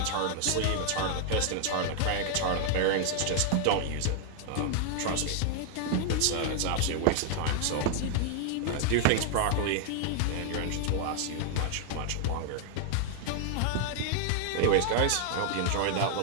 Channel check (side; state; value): both; different; correlation 0.00